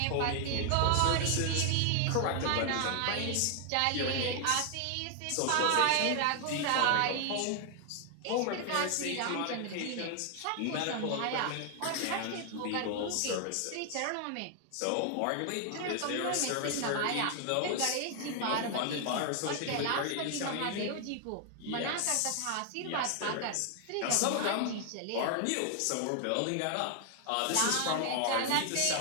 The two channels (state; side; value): different; both; correlation 0.00